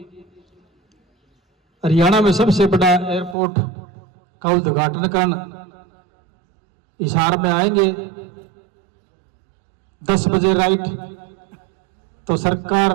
हरियाणा में सबसे बड़ा एयरपोर्ट का उद्घाटन करने हिसार में आएंगे 10 बजे राइट। तो सरकार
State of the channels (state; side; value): drops out; left; at 3.4 s